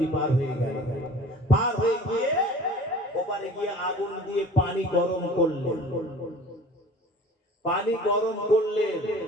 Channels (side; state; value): both; normal; correlation 0.45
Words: পার হয়ে গেল। পার হয়ে গিয়ে ওপারে গিয়ে আগুন দিয়ে পানি গরম করলেন। পানি গরম করলেন